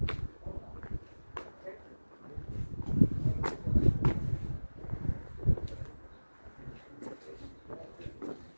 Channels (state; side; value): inverted; both; correlation -1.00